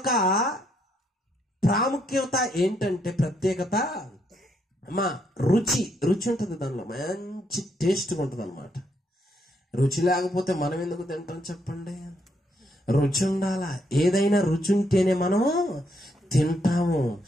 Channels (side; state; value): both; normal; correlation 0.75